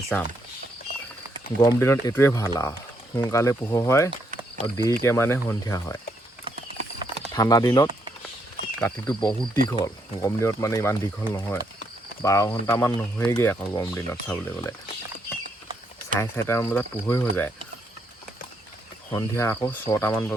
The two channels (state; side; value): normal; both; correlation 0.75